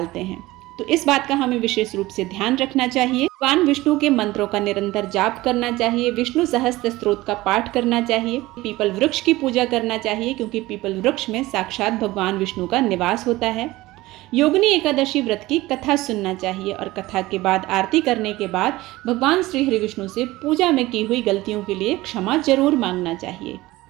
हैं। तो इस बात का हमें विशेष रूप से ध्यान रखना चाहिए। भगवान विष्णु के मंत्रों का निरंतर जाप करना चाहिए, विष्णु सहस्त्र स्तोत्र का पाठ करना चाहिए, पीपल वृक्ष की पूजा करना चाहिए क्योंकि पीपल वृक्ष में साक्षात भगवान विष्णु का निवास होता है। योगिनी एकादशी व्रत की कथा सुनना चाहिए और कथा के बाद आरती करने के बाद भगवान श्री हरि विष्णु से पूजा में की हुई गलतियों के लिए क्षमा जरूर मांगना चाहिए।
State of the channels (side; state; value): left; quieter; 18.6 dB